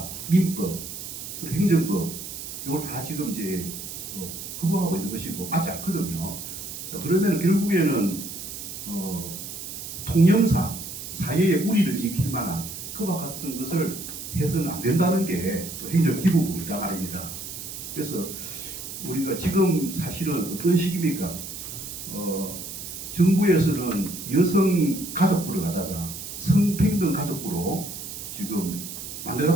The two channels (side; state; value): right; noise; hiss, 9 dB below the sound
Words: 민법 그리고 행정법 이걸 다 지금 이제 거부하고 있는 것이고 맞지 않거든요. 자 그러면 결국에는 통념상 사회의 우리를 지킬 만한 그와 같은 것을 해서는 안 된다는 게 또 행정기본법이다 말입니다. 그래서 우리가 지금 사실은 어떤 시기입니까? 정부에서는 여성 가족부를 갖다가 성평등 가족부로 지금